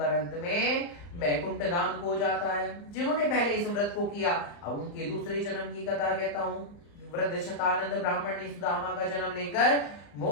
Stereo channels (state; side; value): late; right; 35 ms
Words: अंत में वैकुंठ धाम को जाता है। जिन्होंने पहले इस व्रत को किया, अब उनके दूसरे जन्म की कथा कहता हूँ। वृद्ध शतानंद ब्राह्मण ने सुदामा का जन्म लेकर